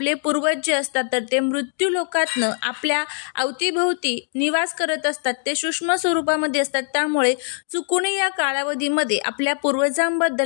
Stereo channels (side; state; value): right; silent; 57 dB below the other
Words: पूर्वज जे असतात तर ते मृत्यू लोकातनं आपल्या अवतीभोवती निवास करत असतात. ते सूक्ष्म स्वरूपामध्ये असतात. त्यामुळे चुकूनही या कालावधीमध्ये आपल्या